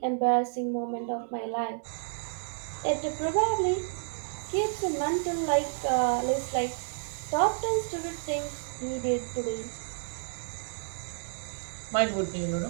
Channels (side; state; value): left; silent; digital silence